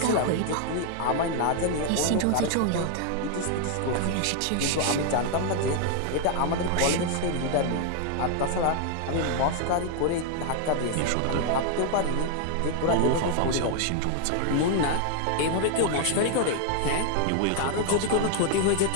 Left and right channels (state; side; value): different; both; correlation 0.00